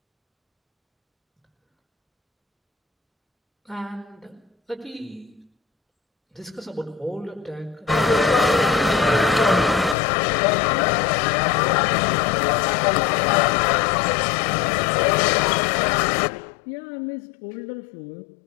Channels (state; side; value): drops out; right; at 10.0 s